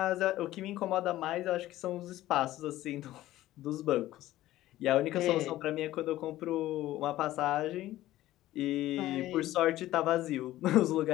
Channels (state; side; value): quieter; right; 15.2 dB